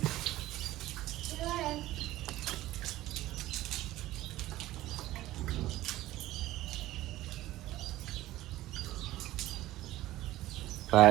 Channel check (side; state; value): left; quieter; 15.9 dB